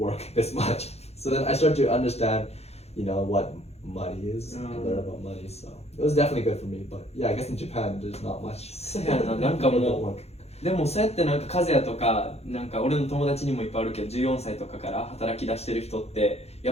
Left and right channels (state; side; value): late; right; 0.31 ms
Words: this much. So then I start to understand, what money is and learn about money. So it was definitely good for me. But yeah, I guess in Japan, there's not much. そうやな、なんか People も don't う work. でもそうやってなんか和也とかなんか俺の友達にもいっぱいあるけど14歳とかから働き出してる人って